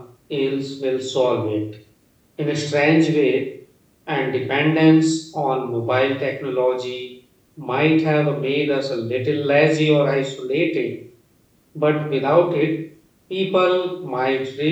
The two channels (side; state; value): both; identical; correlation 1.00